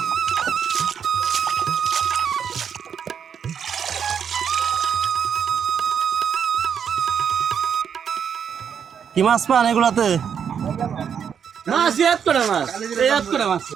কি মাছ পান এগুলাতে? মাছ এক করে মাছ এক করে মাছ।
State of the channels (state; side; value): quieter; left; 7.6 dB